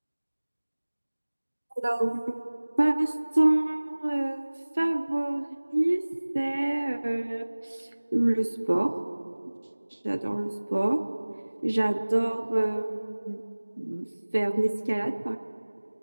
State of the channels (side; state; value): both; inverted; correlation -1.00